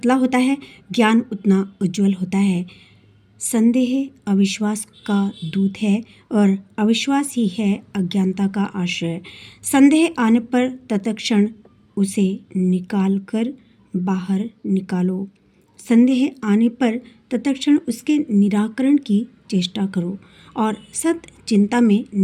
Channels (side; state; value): both; identical; correlation 1.00